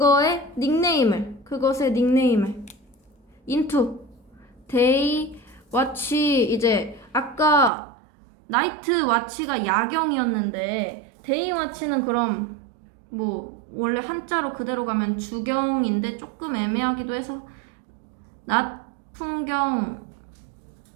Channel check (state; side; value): drops out; left; at 7.7 s